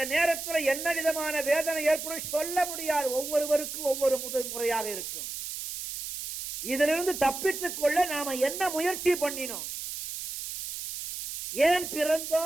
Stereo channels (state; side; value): noise; right; hiss, 7 dB below the sound